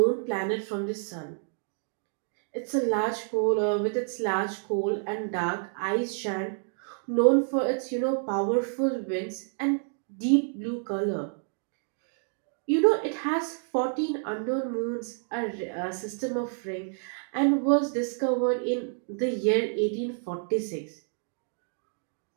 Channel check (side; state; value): left; silent; 59 dB below the other